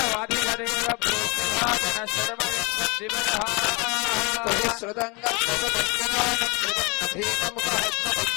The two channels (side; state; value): right; quieter; 29.4 dB